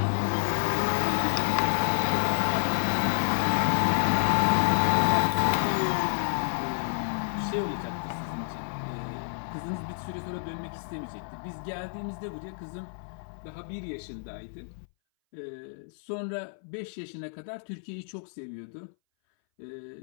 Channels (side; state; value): right; silent; 58 dB below the other